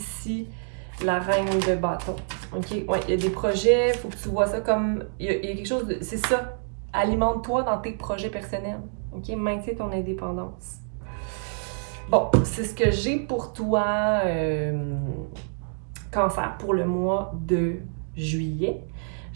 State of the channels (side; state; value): left; silent; 60 dB below the other